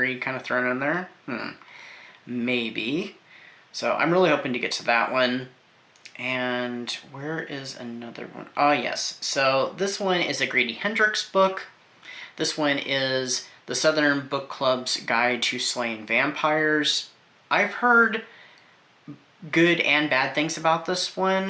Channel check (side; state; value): both; identical; correlation 1.00